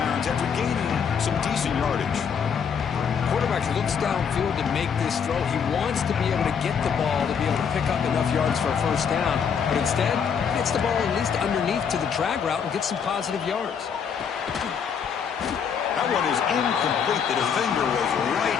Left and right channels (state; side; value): quieter; right; 7.0 dB